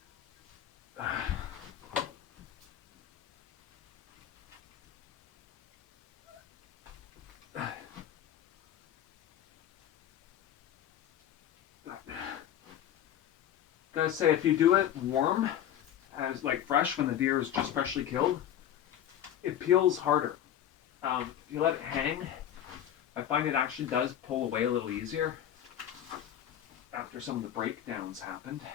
Gotta say, if you do it warm, as like fresh when the deer is just freshly killed, it peels harder. If you let it hang, I find it actually does pull away a little easier after some of the breakdowns happened.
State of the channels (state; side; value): quieter; right; 10.7 dB